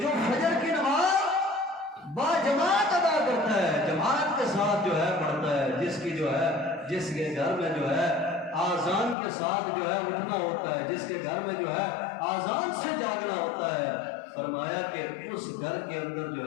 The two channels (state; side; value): drops out; right; at 9.2 s